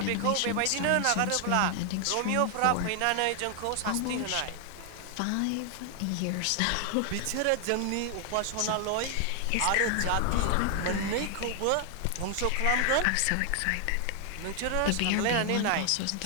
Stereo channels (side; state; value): both; different; correlation 0.00